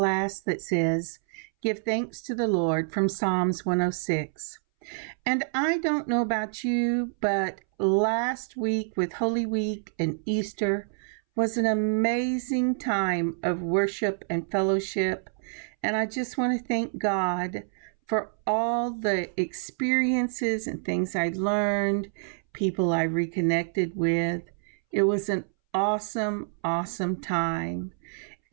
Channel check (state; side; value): silent; left; 60 dB below the other